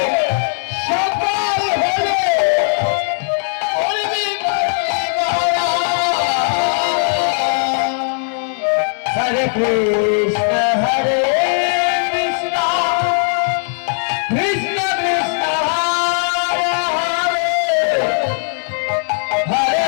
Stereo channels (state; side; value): silent; right; digital silence